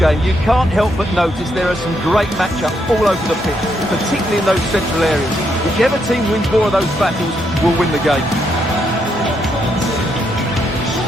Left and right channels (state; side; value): normal; both; correlation 0.77